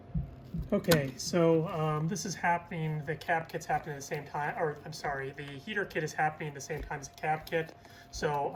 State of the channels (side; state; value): both; identical; correlation 1.00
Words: Okay, so this is happening, the cab kit's happening at the same time, or I'm sorry, the heater kit is happening at the same time as the cab kit. So